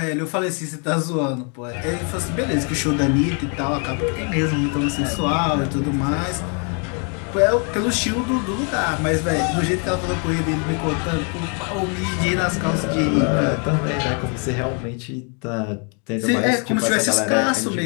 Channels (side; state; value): right; quieter; 38.4 dB